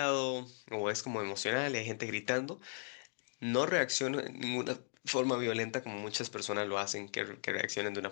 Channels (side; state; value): right; silent; 53 dB below the other